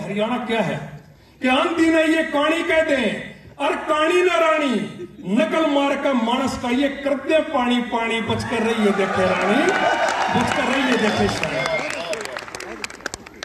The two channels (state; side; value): identical; both; correlation 1.00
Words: क्या है, कि आंधी ने ये कहानी कह दे, और कहानी न रानी नकल मार का मानस का ये करते पानी पानी, बच कर रही है देखे रानी, बच कर रही है देखे शानी।